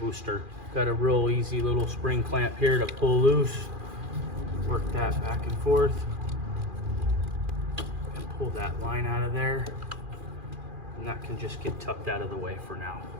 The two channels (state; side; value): late; left; 2.4 ms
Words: Got a real easy little spring clamp here to pull loose. Work that back and forth and pull that line out of there. And that can just get tucked out of the way for now.